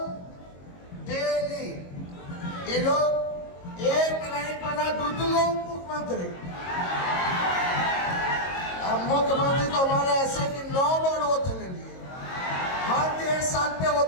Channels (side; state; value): right; late; 22 ms